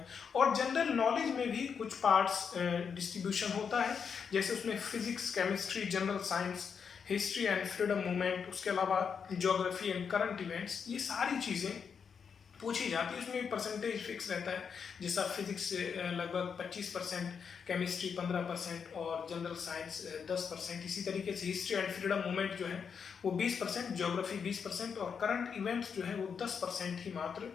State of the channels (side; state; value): right; quieter; 6.5 dB